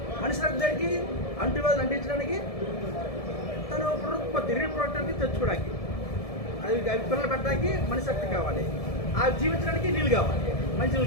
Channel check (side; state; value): right; late; 1.7 ms